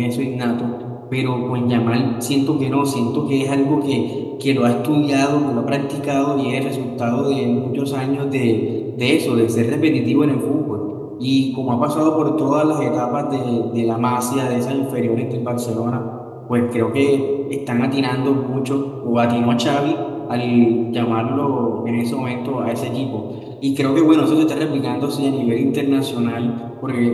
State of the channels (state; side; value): identical; both; correlation 1.00